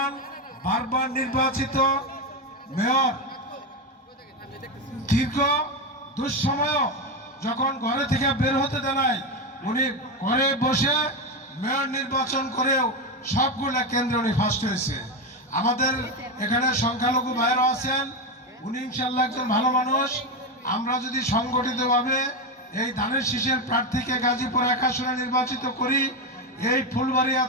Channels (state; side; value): normal; both; correlation 0.12